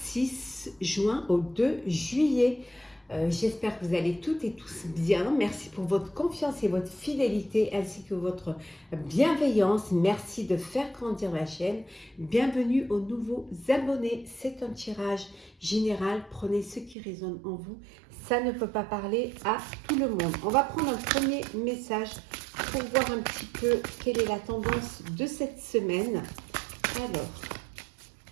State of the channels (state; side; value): drops out; left; at 16.9 s